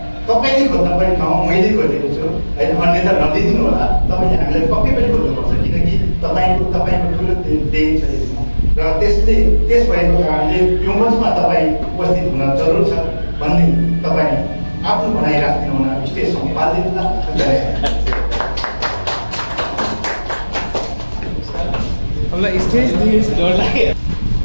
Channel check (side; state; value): both; inverted; correlation -1.00